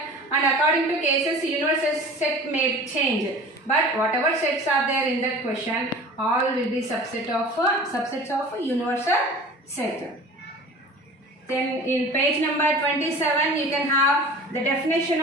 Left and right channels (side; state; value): both; normal; correlation 0.41